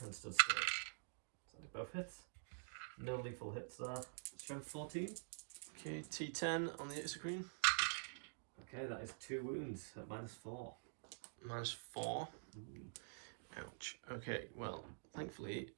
and stood still. So they both hit. No lethal hits there. Strength 14. Okay, T10 on the Execreen. Okay, that is 2 wounds at -4. -4. Ouch. Okay, well, thankfully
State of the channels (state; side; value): silent; left; digital silence